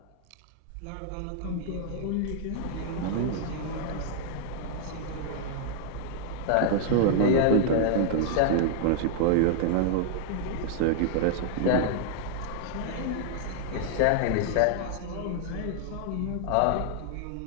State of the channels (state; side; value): different; both; correlation -0.01